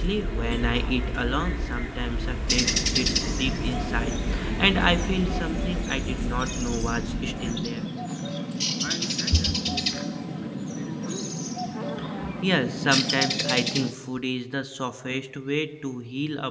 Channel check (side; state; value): both; identical; correlation 1.00